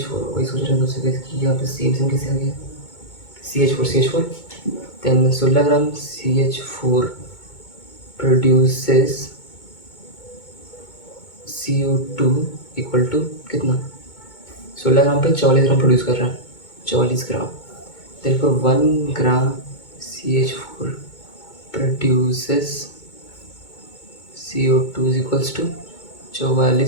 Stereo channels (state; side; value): late; right; 2.2 ms